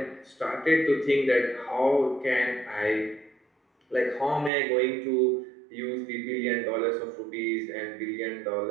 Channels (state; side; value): drops out; left; at 4.5 s